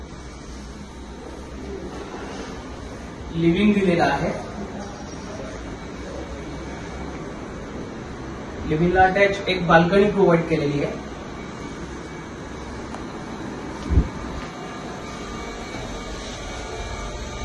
लिव्हिंग दिलेला आहे। लिव्हिंगला अटॅच एक बाल्कनी प्रोव्हाइड केलेली आहे।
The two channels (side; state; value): both; identical; correlation 1.00